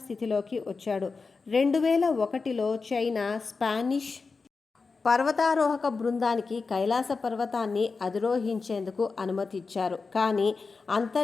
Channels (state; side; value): quieter; right; 4.4 dB